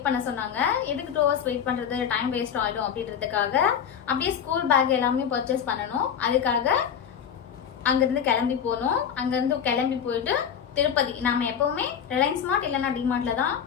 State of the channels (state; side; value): quieter; right; 8.1 dB